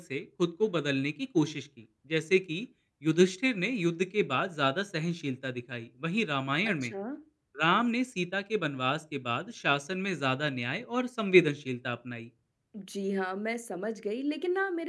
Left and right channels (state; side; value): identical; both; correlation 1.00